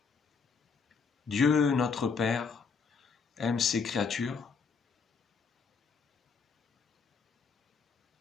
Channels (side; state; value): right; quieter; 5.3 dB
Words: Dieu, notre Père, aime ses créatures.